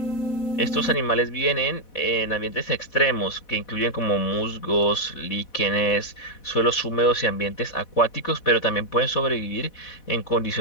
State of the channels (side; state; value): right; late; 4.1 ms